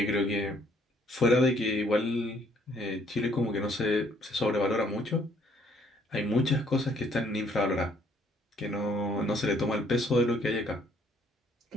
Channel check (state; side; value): normal; both; correlation 0.64